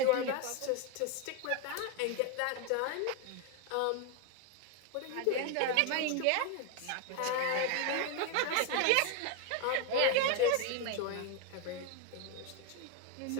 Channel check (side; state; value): both; different; correlation 0.01